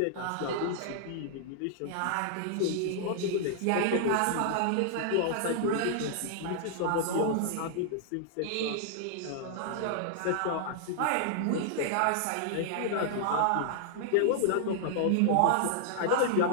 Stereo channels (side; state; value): both; different; correlation -0.01